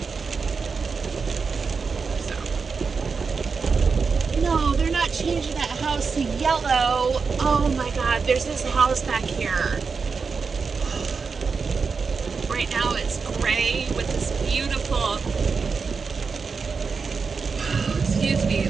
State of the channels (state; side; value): quieter; left; 5.1 dB